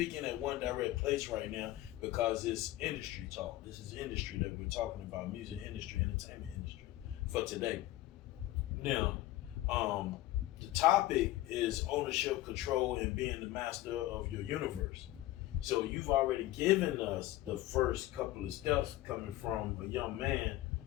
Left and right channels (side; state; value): right; quieter; 16.1 dB